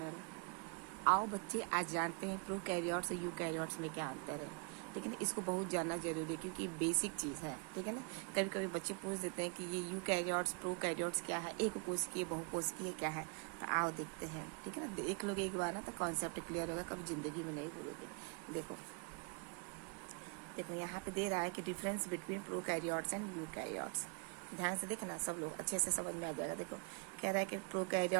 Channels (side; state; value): left; quieter; 35.3 dB